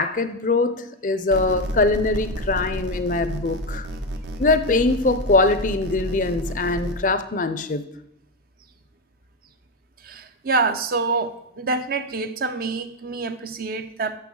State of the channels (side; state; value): both; normal; correlation 0.10